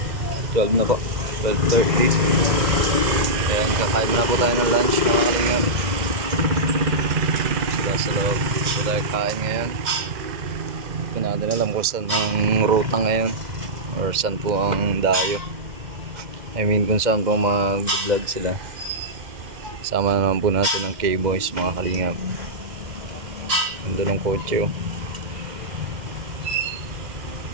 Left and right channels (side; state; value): left; late; 2.0 ms